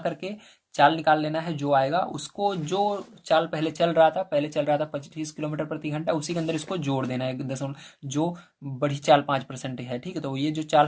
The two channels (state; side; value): identical; both; correlation 1.00